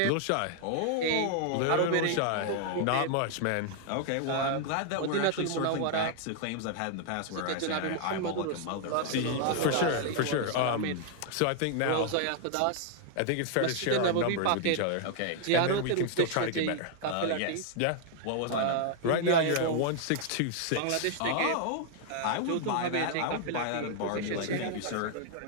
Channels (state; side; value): different; both; correlation 0.00